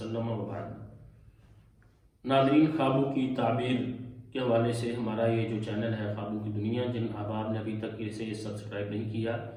وبعد۔ ناظرین، خوابوں کی تعبیر کے حوالے سے ہمارا یہ جو چینل ہے خوابوں کی دنیا، جن احباب نے ابھی تک اسے سبسکرائب نہیں کیا،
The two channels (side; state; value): both; identical; correlation 1.00